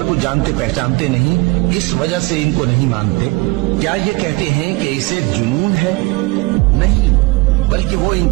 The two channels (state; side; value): quieter; left; 23.6 dB